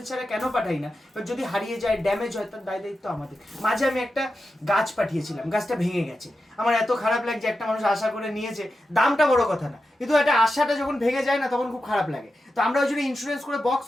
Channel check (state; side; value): normal; both; correlation 0.90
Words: ছাড়া কেন পাঠাই না? যদি হারিয়ে যায়, ড্যামেজ হয়, তার দায় দায়িত্ব আমাদের। মাঝে আমি একটা গাছ পাঠিয়েছিলাম, গাছটা ভেঙে গেছে। আমার এত খারাপ লাগছে, একটা মানুষ আশা করে নিয়েছে, দামটা বড় কথা না, কিন্তু একটা আশাটা যখন ভেঙে যায় না, তখন খুব খারাপ লাগে। তো আমরা ওই জন্য ইন্স্যুরেন্স করে বক্স